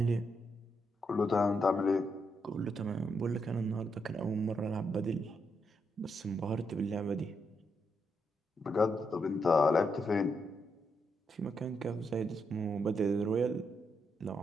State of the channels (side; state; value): both; normal; correlation 0.80